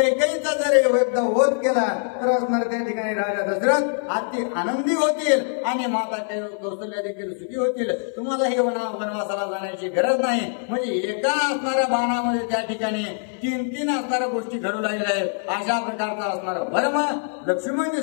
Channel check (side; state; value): right; silent; 58 dB below the other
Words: जर एकदा वध केला तर असणार त्या ठिकाणी राजा दशरथ अति आनंदी होतील आणि माता कौशल्या देखील सुखी होतील. तुम्हाला हे वनवासाला जाण्याची गरज नाही. म्हणजे एका असणाऱ्या बाणामध्ये त्या ठिकाणी 3 असणाऱ्या गोष्टी घडू लागल्या आहेत. अशा प्रकारचा असणारा भरम लक्ष्मणजी